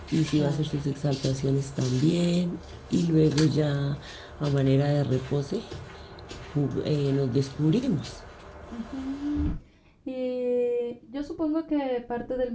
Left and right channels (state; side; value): identical; both; correlation 1.00